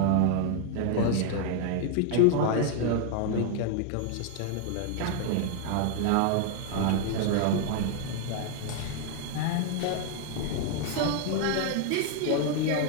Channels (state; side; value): different; both; correlation 0.00